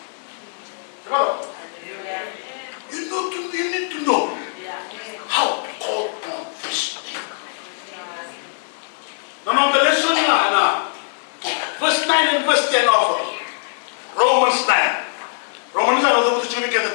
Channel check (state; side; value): silent; right; 65 dB below the other